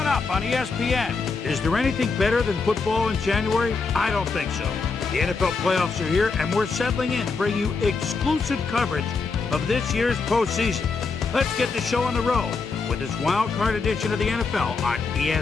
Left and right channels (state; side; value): quieter; right; 4.5 dB